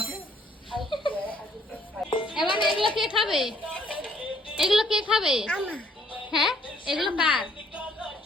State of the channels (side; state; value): both; normal; correlation 0.64